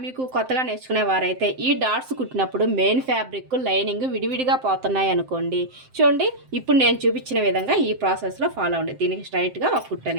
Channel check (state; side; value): late; left; 7.7 ms